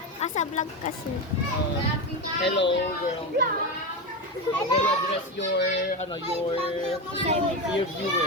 Asa vlog ka, sir? Hello, girl. Can you address your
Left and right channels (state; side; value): normal; both; correlation 0.17